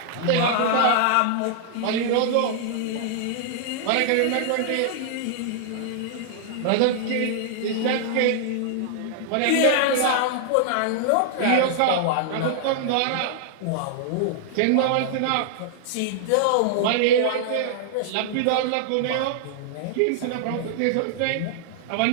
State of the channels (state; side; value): different; both; correlation -0.01